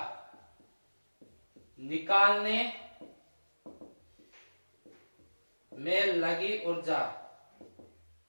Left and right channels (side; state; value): both; inverted; correlation -1.00